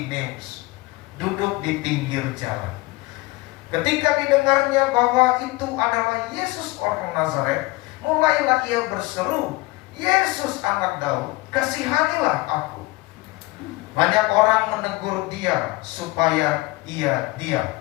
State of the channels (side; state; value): right; quieter; 21.1 dB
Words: duduk di pinggir jalan. Ketika didengarnya bahwa itu adalah Yesus orang Nazaret, mulailah ia berseru, "Yesus anak Daud, kasihanilah aku." Banyak orang menegur dia supaya ia diam.